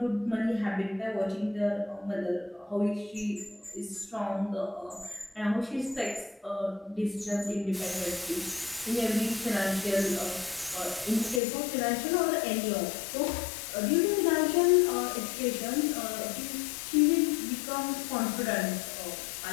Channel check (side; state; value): right; drops out; at 11.4 s